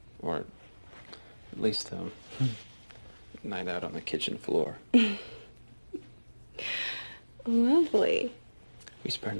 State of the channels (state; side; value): inverted; both; correlation -1.00